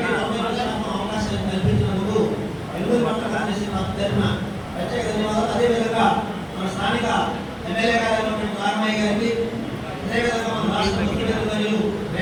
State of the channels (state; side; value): identical; both; correlation 1.00